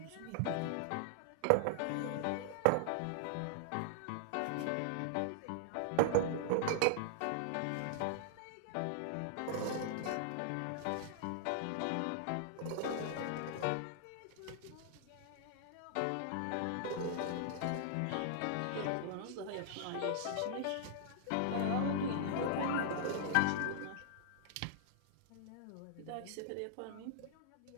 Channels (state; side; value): different; both; correlation -0.01